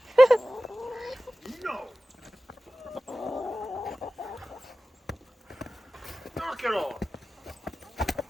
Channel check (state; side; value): normal; both; correlation 0.95